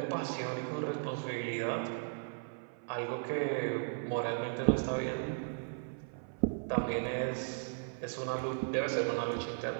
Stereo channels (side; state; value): left; silent; 54 dB below the other